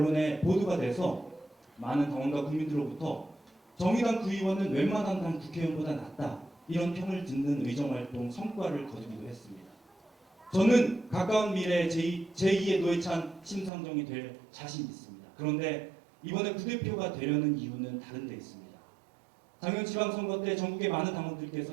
보도가 돼서 많은 당원과 국민들로부터 정의당 구의원은 웬만한 당 국회의원보다 낫다, 이런 평을 듣는 의정활동 성과를 거두기도 했습니다. 저는 가까운 미래에 제2의 노회찬 심상정이 될 자신이 있습니다. 그런데 이번에 부대표가 되려는 이유는 다른 데 있습니다. 작년 지방선거 때 전국의 많은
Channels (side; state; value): left; drops out; at 13.7 s